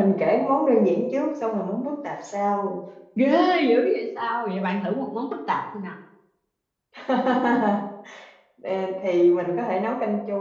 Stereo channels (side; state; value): both; identical; correlation 1.00